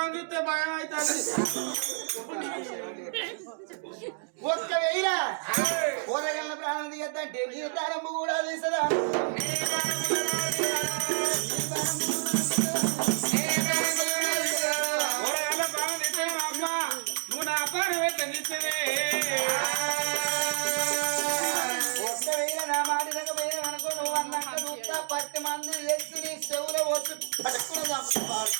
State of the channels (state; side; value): silent; left; digital silence